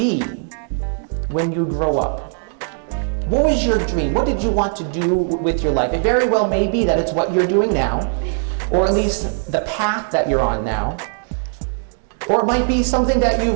when you grow up? What was your dream? What did you want to do with your life? It very well may be that it's what you're doing now, or at least the path that you're on now. Or it might be something that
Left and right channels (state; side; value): silent; left; 58 dB below the other